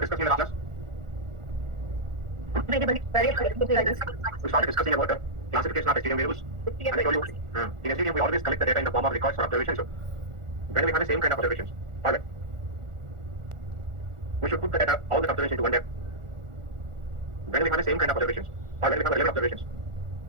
discussing in the last class? We started discussing about the classification of STM variables. And I told you, in STM we always collect the data in the form of records or observations. So when we have the same kind of observations, alright, we should put the data, all the observations into one data. When we have the same kind of observations, or when we have 11 observations,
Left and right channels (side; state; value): left; late; 1.4 ms